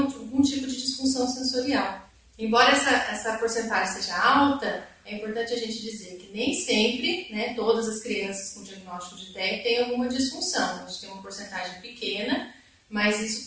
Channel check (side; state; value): both; identical; correlation 1.00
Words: tipo de disfunção sensorial. Embora essa porcentagem seja alta, é importante a gente dizer que nem sempre, né, todas as crianças com diagnóstico de TEA têm alguma disfunção. A gente tem uma porcentagem pequena,